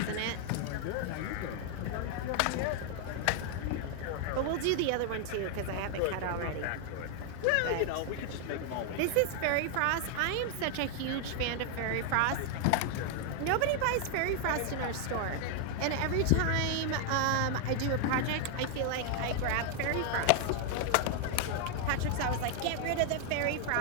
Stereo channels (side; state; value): both; different; correlation 0.00